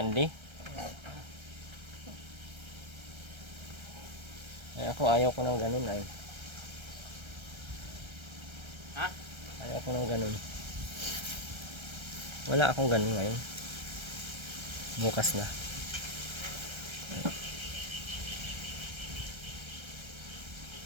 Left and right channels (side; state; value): left; late; 1.3 ms